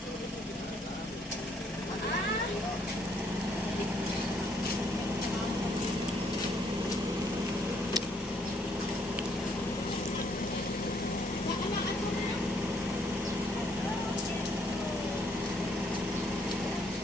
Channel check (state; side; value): normal; both; correlation 0.69